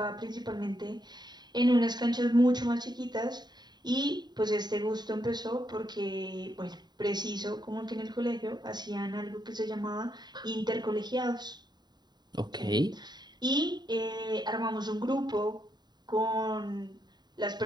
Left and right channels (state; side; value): late; left; 0.20 ms